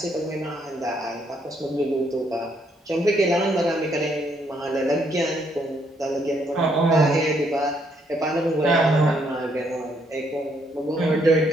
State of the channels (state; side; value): normal; both; correlation 0.71